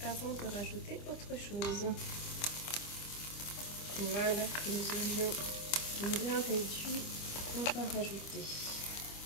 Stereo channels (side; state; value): right; late; 25 ms